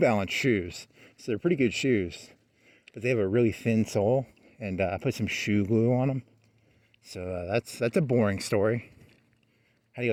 shoes, so they're pretty good shoes. But they have a really thin sole, and I put some shoe glue on them. So that's a boring story. How do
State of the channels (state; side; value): identical; both; correlation 1.00